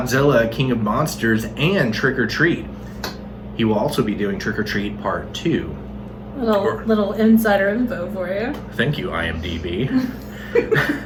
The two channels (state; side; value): identical; both; correlation 1.00